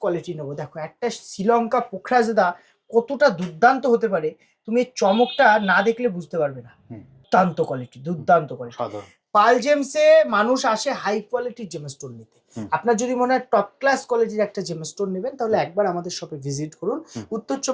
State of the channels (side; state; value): both; identical; correlation 1.00